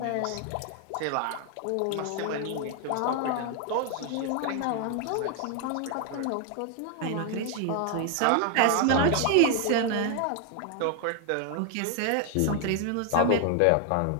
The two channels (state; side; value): different; both; correlation 0.00